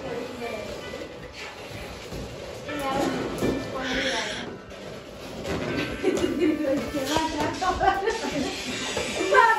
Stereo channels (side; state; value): both; identical; correlation 1.00